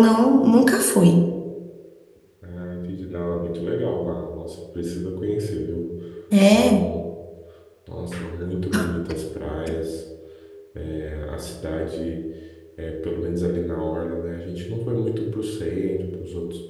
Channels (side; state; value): both; identical; correlation 1.00